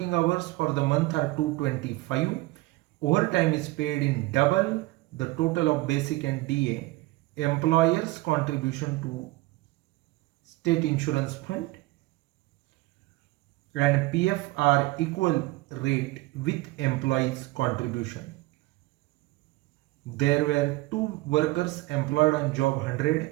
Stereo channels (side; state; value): left; quieter; 20.2 dB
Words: hours for the month are 225. Overtime is paid in double the total of basic and DA. Employers contribution to state insurance fund and PF are equal rate with employees contribution. There were two workers employed on job